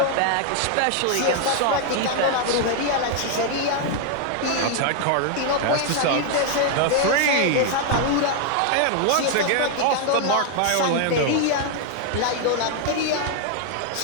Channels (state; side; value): different; both; correlation 0.00